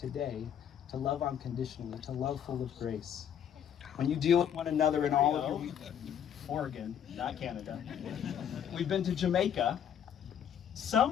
to love unconditionally, to love full of grace. When you deal with one another in all of your... Oregon, not Canada. We've been to Jamaica.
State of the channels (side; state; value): right; quieter; 9.0 dB